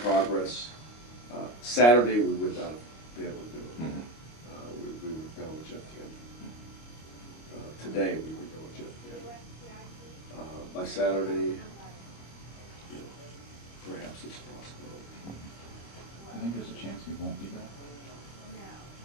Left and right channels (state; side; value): late; right; 25 ms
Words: Saturday we would not be able to do it. Mm-hmm. We would go with Jeff Camp. Today we would go with Jeff Camp. By Saturday, perhaps it's a possibility. I think there's a chance he won't be back.